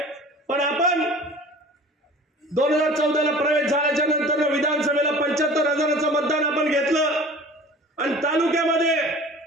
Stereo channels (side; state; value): both; normal; correlation 0.43